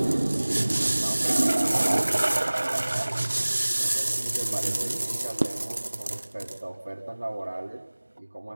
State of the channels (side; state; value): both; inverted; correlation -1.00